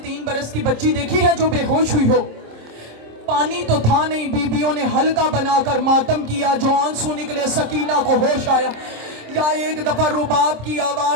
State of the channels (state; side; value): late; left; 26 ms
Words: बरस की बच्ची देखी है जो बेहोश हुई हो? पानी तो था नहीं, बीबियों ने हल्का बनाकर मातम किया, जो आंसू निकले सकीना को होश आया। या एक दफा रुबाब की